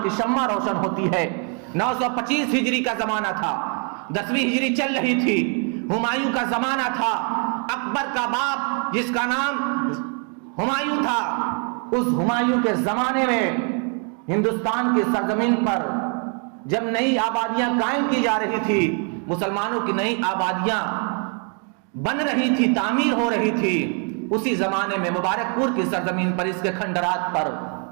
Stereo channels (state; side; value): quieter; left; 39.4 dB